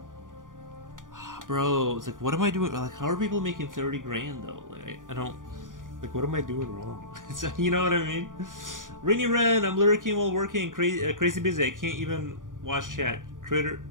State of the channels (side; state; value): left; late; 0.89 ms